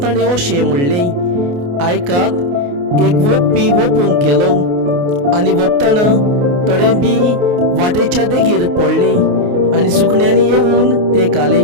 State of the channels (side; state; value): left; late; 28 ms